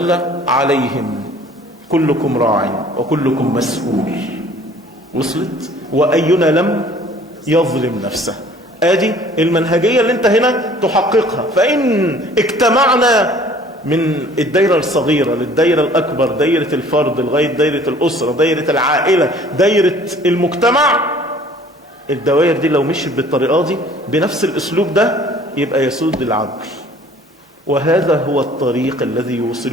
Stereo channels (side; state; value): both; normal; correlation 0.52